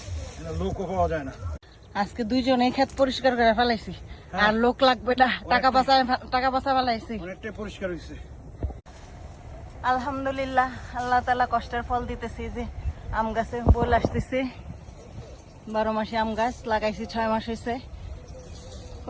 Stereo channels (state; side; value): identical; both; correlation 1.00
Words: লোকও পাওয়া যায় না। আজকে দুইজনে ক্ষেত পরিষ্কার করে ফেলাইছি, আর লোক লাগবে না, টাকা বাঁচা ফেলাইছি। অনেকটাই পরিষ্কার হয়েছে। আলহামদুলিল্লাহ, আল্লাহ তাআলা কষ্টের ফল দিতেছি। যে আম গাছে বল আসতেছে, 12 মাসে আম গাছ লাগাইছি, 6 মাস হয়েছে।